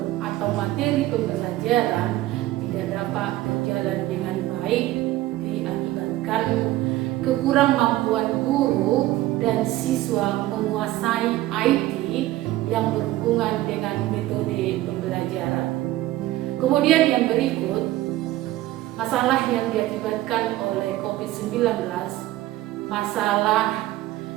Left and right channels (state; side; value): quieter; left; 16.1 dB